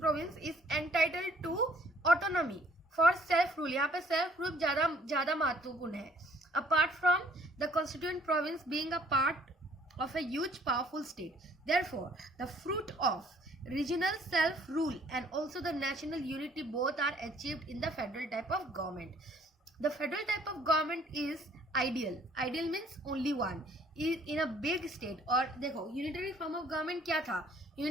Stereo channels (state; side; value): normal; both; correlation 0.59